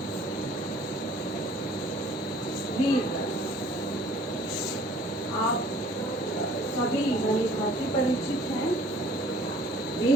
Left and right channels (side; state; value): both; normal; correlation 0.54